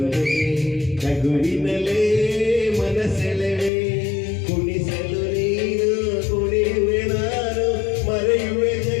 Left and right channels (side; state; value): right; drops out; at 3.7 s